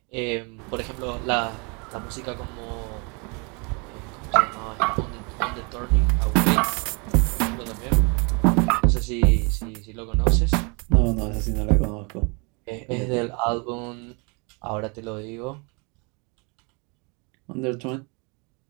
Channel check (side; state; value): left; quieter; 32.2 dB